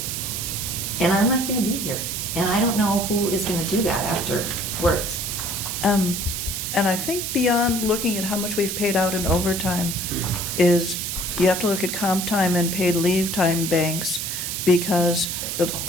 I'm not going to be here. And I don't know who is going to do that afterwards. And I think beyond looking at how much we've paid out in overtime is you have to look at comp time and paid leave time banks, because the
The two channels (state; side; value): noise; right; hiss, 3 dB below the sound